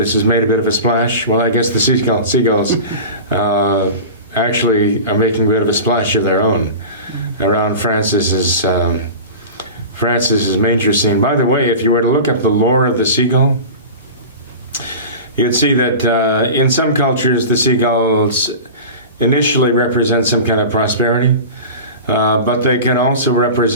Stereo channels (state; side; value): inverted; both; correlation -0.32